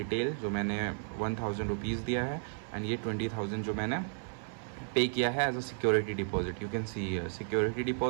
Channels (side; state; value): left; silent; digital silence